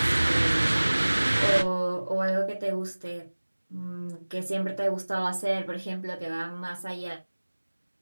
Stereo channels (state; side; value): inverted; both; correlation -1.00